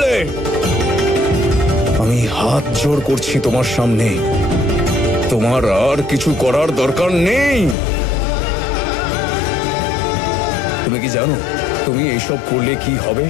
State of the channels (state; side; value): drops out; right; at 7.8 s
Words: আমি হাত জোড় করছি তোমার সামনে, তোমার আর কিছু করার দরকার নেই। তুমি কি জানো তুমি এইসব করলে কি হবে?